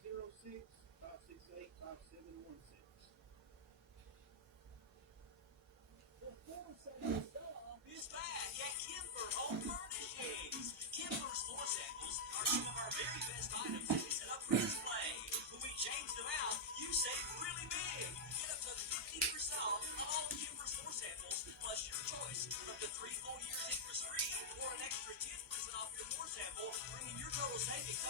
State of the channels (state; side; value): normal; both; correlation -0.06